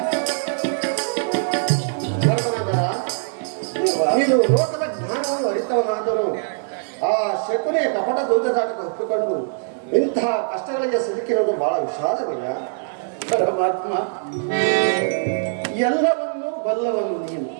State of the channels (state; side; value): silent; left; digital silence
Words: ಧರ್ಮನಂದನ, ನೀನು ಲೋಕದ ಜ್ಞಾನವನ್ನು ಅರಿತವನಾದರೂ ಆ ಶಕುನಿಯ ಕಪಟ ದೂತದಾಟಕ್ಕೆ ಒಪ್ಪಿಕೊಂಡು ಇಂತಹ ಕಷ್ಟಗಳಿಗೆ ಸಿಲುಕಿರುವುದು ಬಹಳ ವಿಷಾದವೀಯ. ಪರಮಾತ್ಮ, ಎಲ್ಲವನ್ನೂ ಬಲ್ಲವನು ನೀನು.